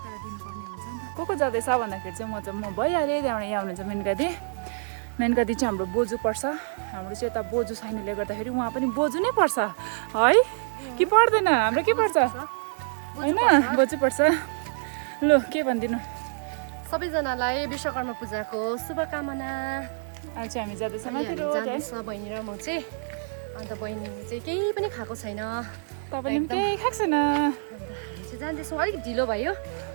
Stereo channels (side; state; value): left; silent; digital silence